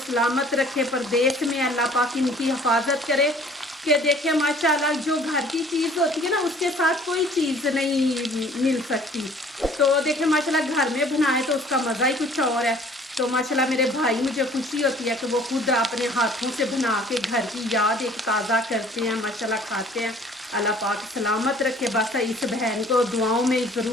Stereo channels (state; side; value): normal; both; correlation 0.53